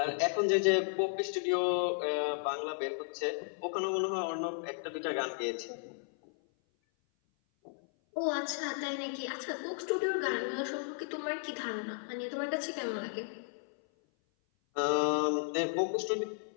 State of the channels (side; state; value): right; silent; 55 dB below the other